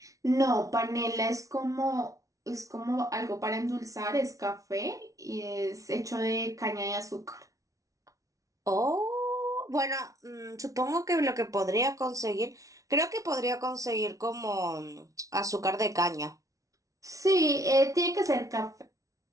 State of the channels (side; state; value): left; late; 0.17 ms